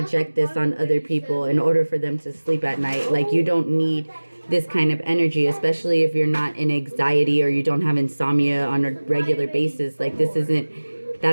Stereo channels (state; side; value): inverted; both; correlation -1.00